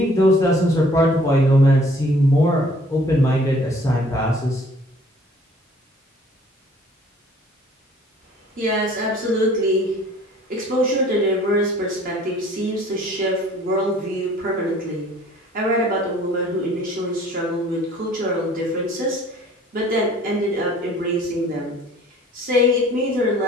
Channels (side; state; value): both; normal; correlation 0.54